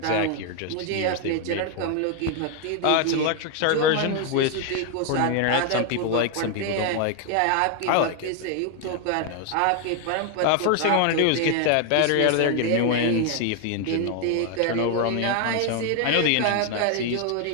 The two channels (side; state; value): both; different; correlation 0.01